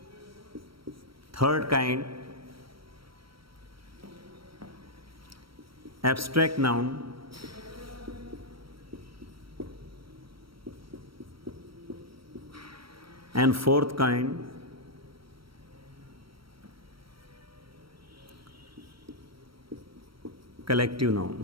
Third kind abstract noun, and fourth kind collective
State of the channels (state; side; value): late; left; 0.75 ms